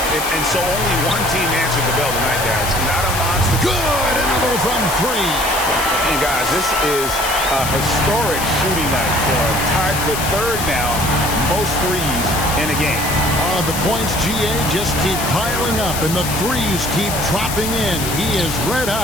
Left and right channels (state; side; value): noise; left; hiss, 5 dB below the sound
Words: And so only one team answered the bell tonight, guys. Not a monster. Good! Another from three. And, guys, this is a historic shooting night for him. Tied for third now. Most threes in a game. The points, GA, just keep piling up, and the threes keep dropping in. He is red